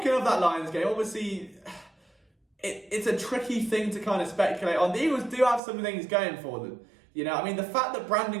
of that Lions game, obviously, it's a tricky thing to kind of speculate on. The Eagles do have some things going for them. The fact that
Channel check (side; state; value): left; drops out; at 5.6 s